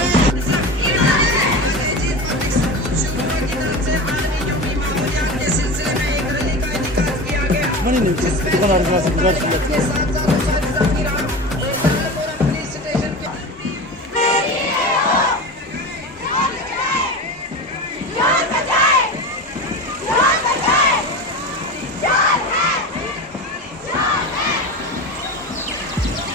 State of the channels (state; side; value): normal; both; correlation 0.28